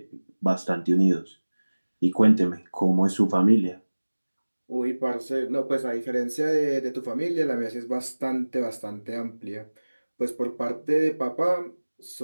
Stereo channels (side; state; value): both; inverted; correlation -1.00